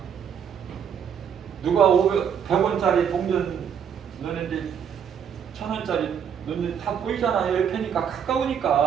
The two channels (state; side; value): quieter; left; 8.0 dB